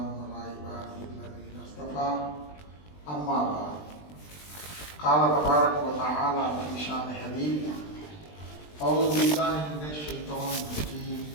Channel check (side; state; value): right; late; 20 ms